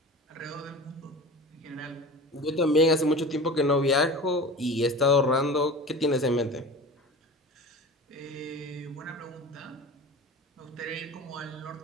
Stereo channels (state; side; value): normal; both; correlation 0.35